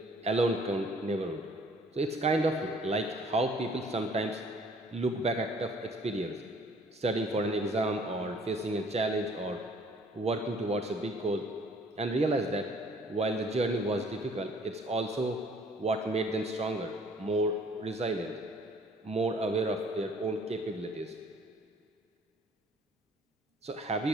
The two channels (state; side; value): normal; both; correlation 0.57